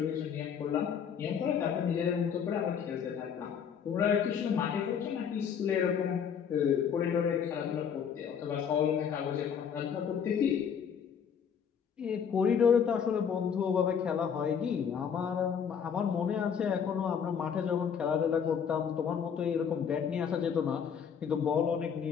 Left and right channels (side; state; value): right; quieter; 7.4 dB